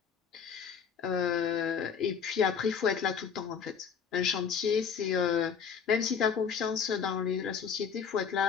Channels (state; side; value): quieter; right; 6.8 dB